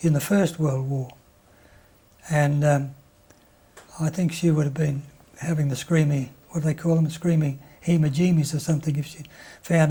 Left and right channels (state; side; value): identical; both; correlation 1.00